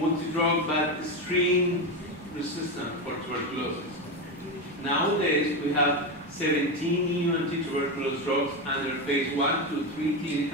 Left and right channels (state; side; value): normal; both; correlation 0.14